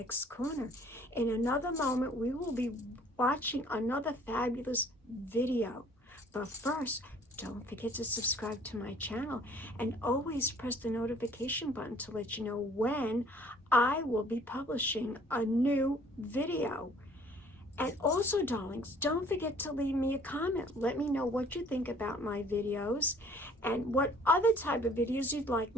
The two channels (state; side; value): normal; both; correlation 0.56